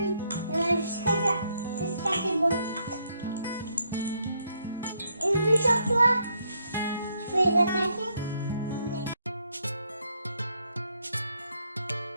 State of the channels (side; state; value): both; inverted; correlation -0.74